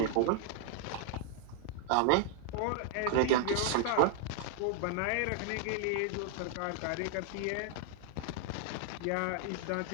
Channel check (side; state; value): both; different; correlation 0.00